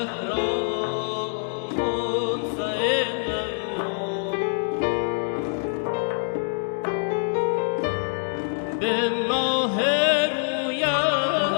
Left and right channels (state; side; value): silent; right; 62 dB below the other